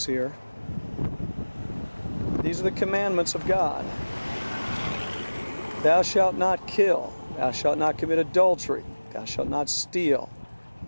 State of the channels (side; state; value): both; inverted; correlation -1.00